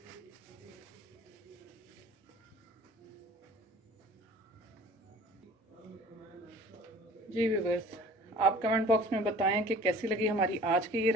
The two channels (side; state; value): both; normal; correlation 0.47